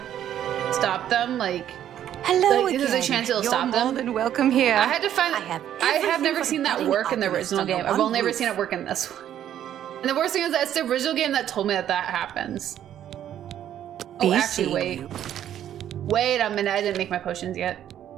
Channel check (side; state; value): left; quieter; 10.8 dB